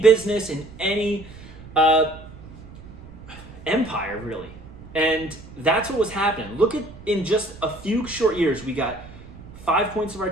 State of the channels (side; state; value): right; noise; rumble, 17 dB below the sound